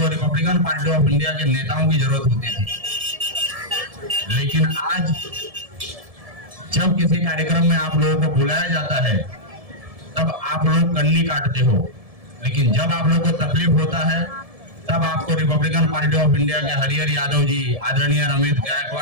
रिपब्लिकन पार्टी ऑफ इंडिया के नेताओं की जरूरत होती थी। लेकिन आज जब किसी कार्यक्रम में आप लोगों को बुलाया जाता है, तब आप लोग कन्नी काटते हो। लेकिन जब आप लोगों को तकलीफ होता है, तब आपको रिपब्लिकन पार्टी ऑफ इंडिया के हरिहर यादव जी, आदरणीय रमेश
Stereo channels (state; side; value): late; left; 1.7 ms